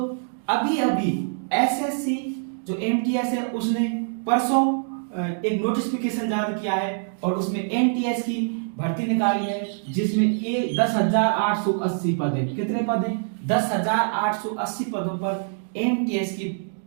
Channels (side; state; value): left; silent; digital silence